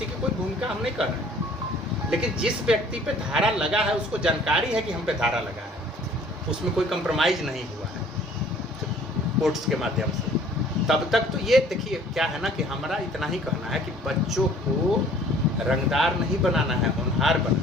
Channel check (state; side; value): normal; both; correlation 0.54